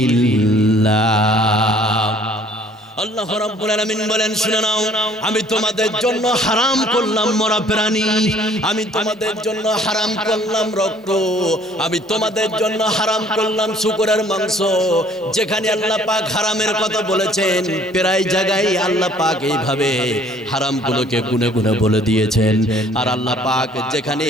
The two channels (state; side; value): normal; both; correlation 0.57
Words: আল্লাহ রাব্বুল আলামিন বলেন, শুনে নাও, আমি তোমাদের জন্য হারাম করলাম মরা প্রাণী, আমি তোমাদের জন্য হারাম করলাম রক্ত, আমি তোমাদের জন্য হারাম করলাম শূকরের মাংস। যেখানে আল্লাহ পাক হারামের কথা বলেছেন প্রায় জায়গায় আল্লাহ পাক এইভাবে হারামগুলোকে গুনে গুনে বলে দিয়েছেন। আর আল্লাহ পাক যেখানে